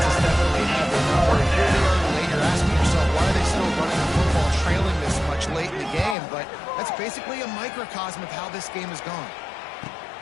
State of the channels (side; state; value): right; drops out; at 6.2 s